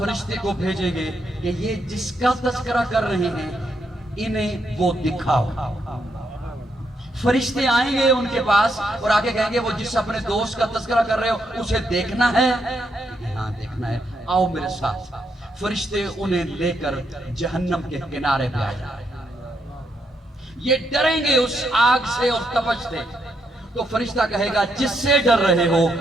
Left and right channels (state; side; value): normal; both; correlation 0.78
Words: کو بھیجیں گے کہ یہ جس کا تذکرہ کر رہے ہیں انہیں وہ دکھاؤ۔ فرشتے آئیں گے ان کے پاس اور آگے کہیں گے وہ جس اپنے دوست کا تذکرہ کر رہے ہو اسے دیکھنا ہے؟ ہاں دیکھنا ہے، آؤ میرے ساتھ۔ فرشتے انہیں لے کر جہنم کے کنارے پہ آ جائیں، یہ ڈریں گے اس آگ سے اور تپش سے، تو فرشتہ کہے گا جس سے ڈر رہے ہو